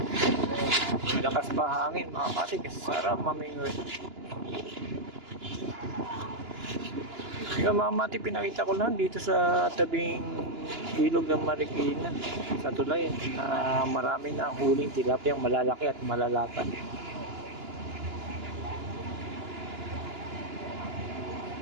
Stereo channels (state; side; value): late; left; 2.9 ms